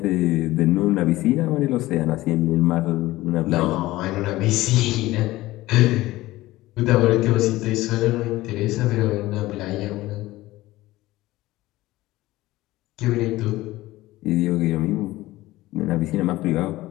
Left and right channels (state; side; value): quieter; right; 17.7 dB